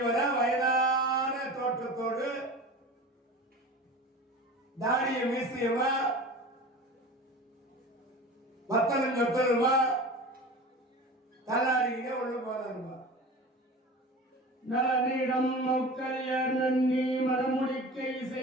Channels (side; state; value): both; normal; correlation 0.35